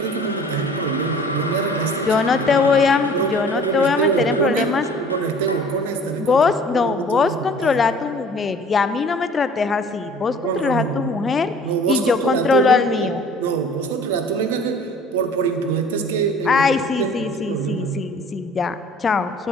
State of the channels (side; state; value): both; normal; correlation 0.49